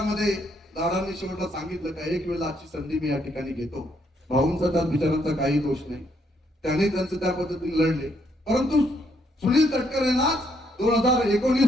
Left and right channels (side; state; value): both; normal; correlation 0.73